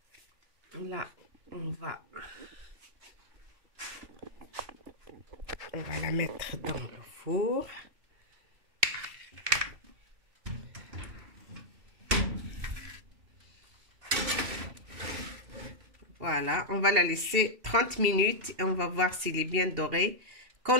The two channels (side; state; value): left; late; 2.7 ms